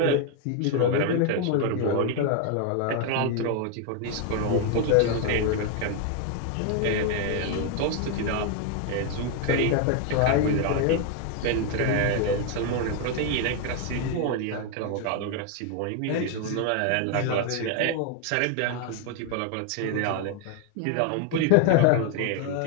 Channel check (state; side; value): different; both; correlation 0.01